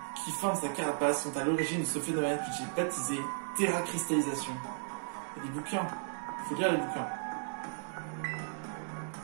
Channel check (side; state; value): left; silent; digital silence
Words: qui forment sa carapace sont à l'origine de ce phénomène que j'ai baptisé terracristallisation. Il y a des bouquins. Il faut lire les bouquins.